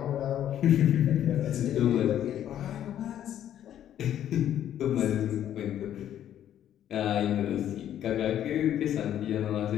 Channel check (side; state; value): right; quieter; 10.9 dB